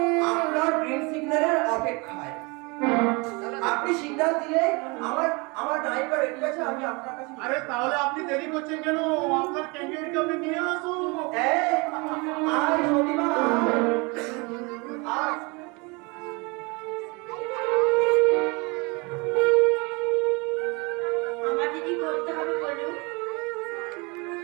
আপনার গ্রিন সিগন্যালের অপেক্ষায়। আপনি সিগন্যাল দিলে আমার নায়িকা রেডি আছে, আমি আপনার কাছে। আরে তাহলে আপনি দেরি করছেন কেন? আপনার ক্যান্ডিডেটকে আপনি নিয়ে আসুন। আয় সতীমা, আয়। আমার দিদি করতে হবে বলুন।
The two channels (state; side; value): quieter; left; 28.3 dB